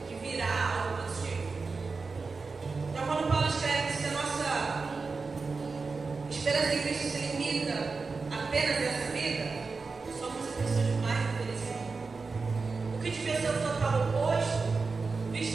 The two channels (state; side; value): quieter; left; 4.4 dB